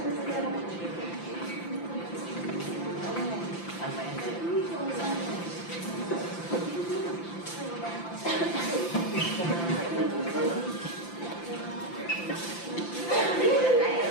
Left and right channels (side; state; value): right; late; 5.8 ms